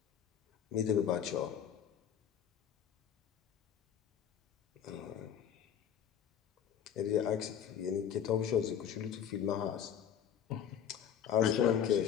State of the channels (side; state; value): right; quieter; 8.9 dB